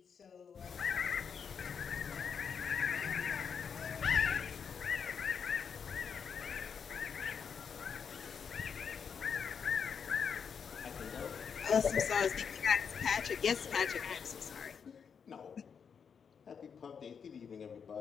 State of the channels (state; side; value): quieter; right; 6.7 dB